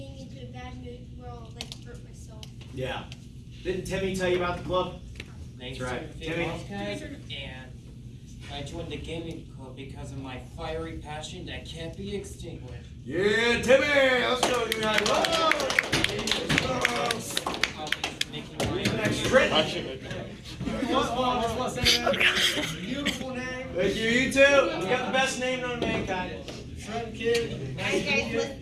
into a bad mood where I'll hurt myself. Yeah. Didn't Timmy tell you about the club? Thanks That's right. Timmy. And I joined the gaming club because of my fiery passion that can't be extinguished. Yeah, Timmy. Let's go. You guys. Beautiful name. Thank you. You too. You got the best name known to mankind. Trent Kid. Alright, guys,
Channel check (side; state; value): both; identical; correlation 1.00